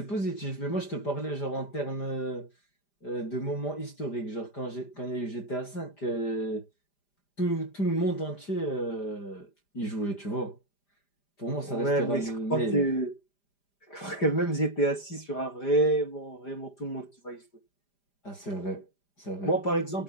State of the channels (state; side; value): late; right; 5.0 ms